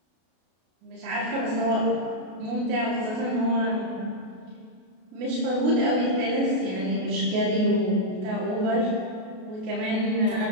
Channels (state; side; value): late; left; 32 ms